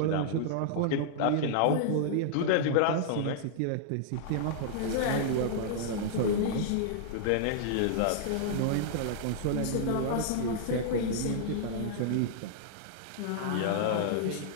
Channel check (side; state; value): both; different; correlation -0.01